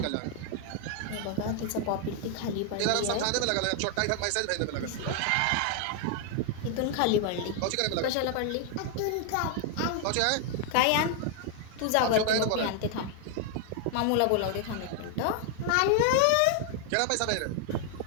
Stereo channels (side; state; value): both; different; correlation 0.00